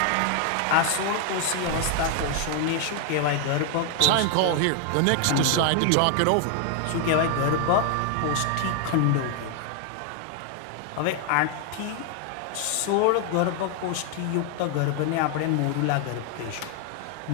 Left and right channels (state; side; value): different; both; correlation 0.00